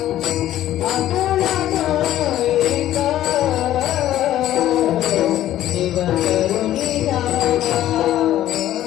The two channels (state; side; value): quieter; right; 13.0 dB